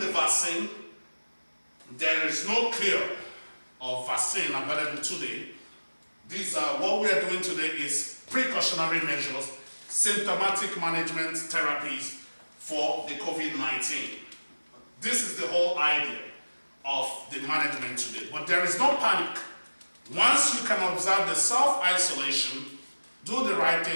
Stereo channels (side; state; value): both; inverted; correlation -1.00